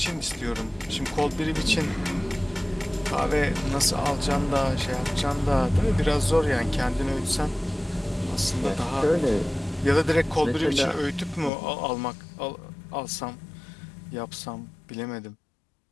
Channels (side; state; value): right; drops out; at 11.5 s